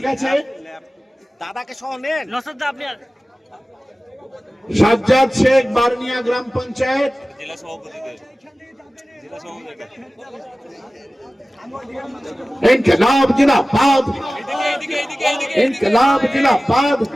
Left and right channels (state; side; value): normal; both; correlation 0.97